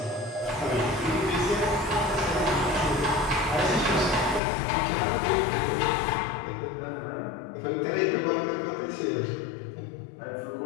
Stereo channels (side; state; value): right; drops out; at 4.4 s